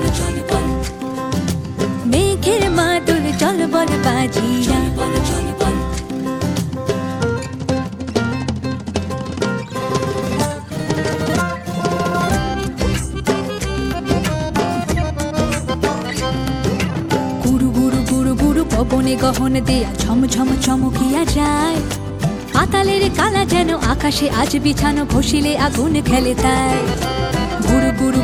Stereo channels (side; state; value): both; identical; correlation 1.00